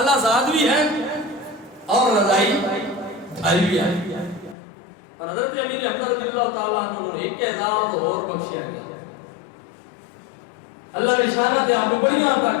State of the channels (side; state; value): right; drops out; at 4.5 s